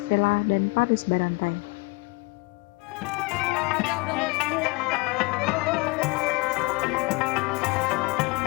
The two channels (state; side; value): quieter; right; 26.1 dB